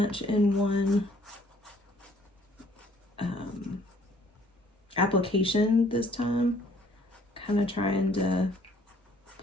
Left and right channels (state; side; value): normal; both; correlation 0.60